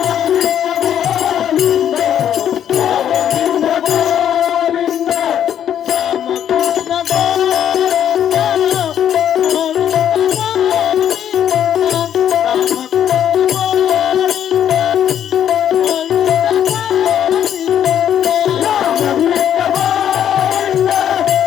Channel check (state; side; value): quieter; right; 9.8 dB